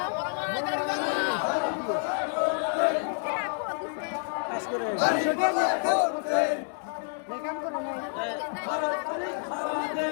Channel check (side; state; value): right; silent; 59 dB below the other